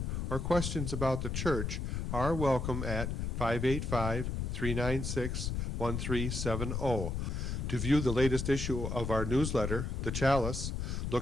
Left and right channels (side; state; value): left; noise; rumble, 2 dB below the sound